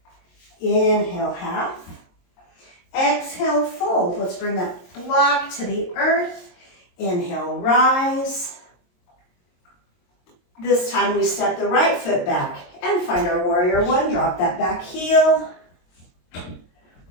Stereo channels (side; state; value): right; late; 22 ms